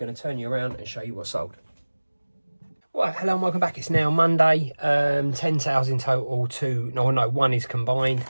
to turn you around and show you what's sold. Right, hello and welcome back. It's now Monday. 10 sales in total. One is combined.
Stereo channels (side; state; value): both; inverted; correlation -1.00